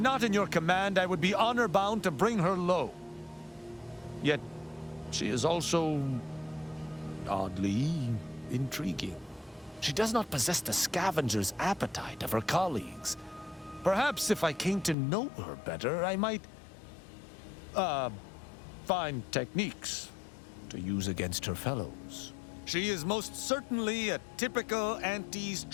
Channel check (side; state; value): right; drops out; at 15.0 s